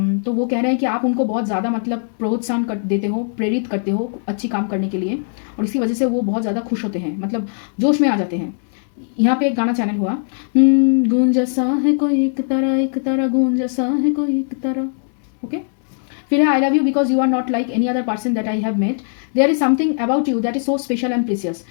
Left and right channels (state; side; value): silent; right; digital silence